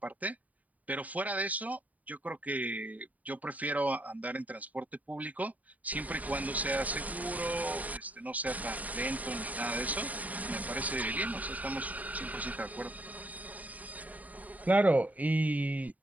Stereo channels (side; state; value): left; late; 0.073 ms